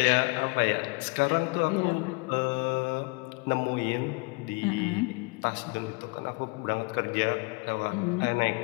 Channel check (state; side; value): quieter; right; 28.5 dB